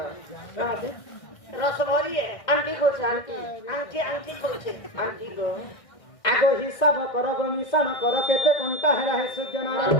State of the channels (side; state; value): right; late; 1.6 ms